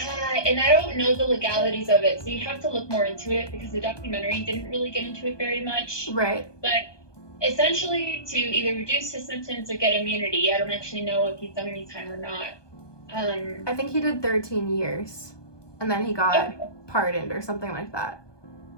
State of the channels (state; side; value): late; right; 1.2 ms